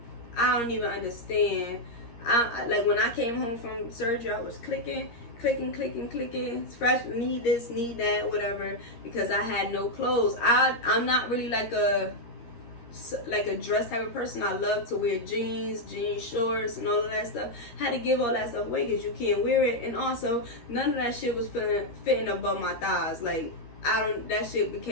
I don't even understand. I like, when I came home from surgery, I was clicking, fresh, need this, need that, whatever, because I had no clothes. I'm not really like a dress type of person. I love to wear jeans shorts, and all of that stuff. Had to give all that stuff away because you can't wear it, and also none of that shit was fitting above my thighs. Like, that shit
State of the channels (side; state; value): right; late; 13 ms